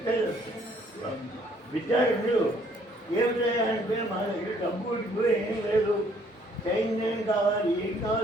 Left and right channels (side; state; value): both; normal; correlation 0.63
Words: విద్యార్థులు ఏమిటంటే మా దగ్గర డబ్బు ఏం లేదు, సైన్యం కావాలి, ఏం